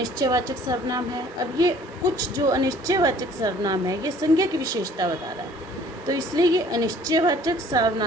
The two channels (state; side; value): normal; both; correlation 0.54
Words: सर्वनाम है। अब ये कुछ जो अनिश्चयवाचक सर्वनाम है, ये संज्ञा की विशेषता बता रहा है, तो इसलिए ये अनिश्चयवाचक